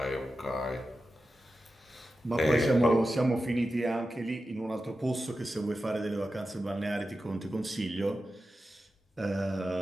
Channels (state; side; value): normal; both; correlation 0.92